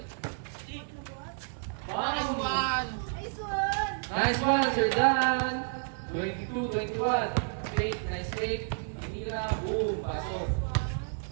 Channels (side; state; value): left; silent; 57 dB below the other